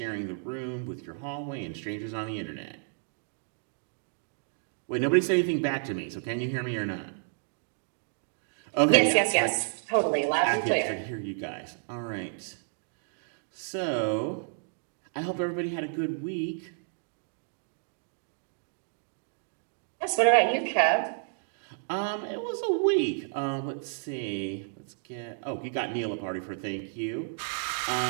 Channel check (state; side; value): silent; left; digital silence